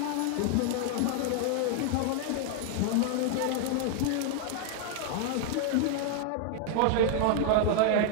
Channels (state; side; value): different; both; correlation 0.00